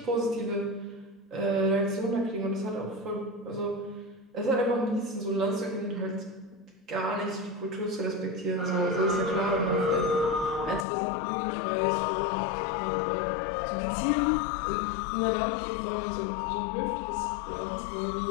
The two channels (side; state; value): right; drops out; at 10.9 s